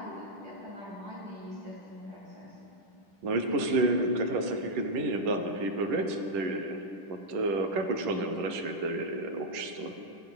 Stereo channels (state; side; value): late; left; 10 ms